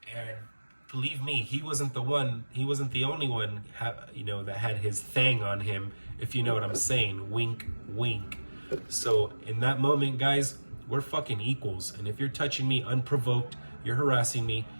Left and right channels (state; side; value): inverted; both; correlation -1.00